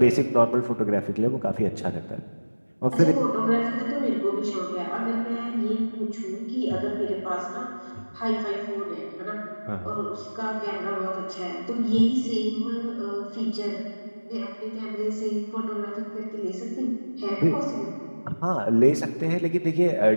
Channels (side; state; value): both; inverted; correlation -1.00